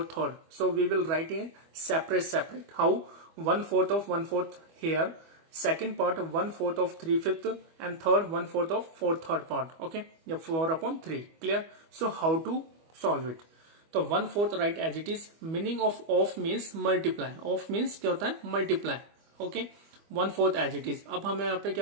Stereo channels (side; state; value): left; late; 25 ms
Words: So we will write a separate. How? 1/4 of 1/4 here, second part 1/4 of 3/5 and third 1/4 of 4/3 part. Okay, yeah, 4/3. Clear? So how to solve it? तो 1/4 right as it is. Meaning of means multiply. Of means क्या होता है? Multiply. Okay, 1/4 as it is. अब हमें यहाँ पे